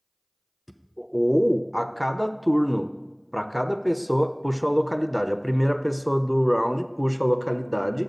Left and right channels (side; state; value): both; identical; correlation 1.00